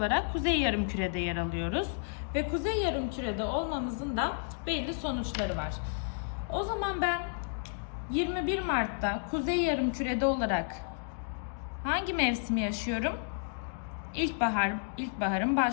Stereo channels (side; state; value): right; silent; digital silence